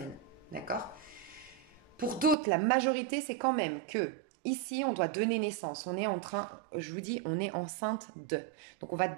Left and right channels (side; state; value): left; drops out; at 2.4 s